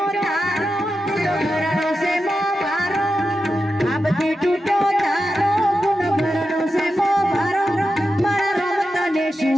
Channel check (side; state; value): both; normal; correlation 0.90